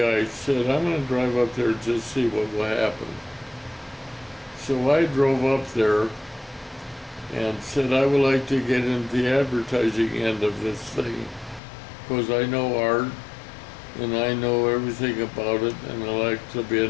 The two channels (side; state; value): right; drops out; at 11.6 s